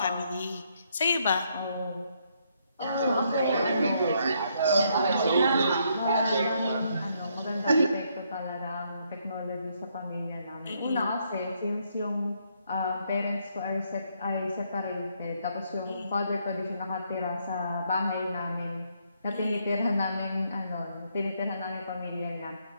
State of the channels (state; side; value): inverted; both; correlation -0.73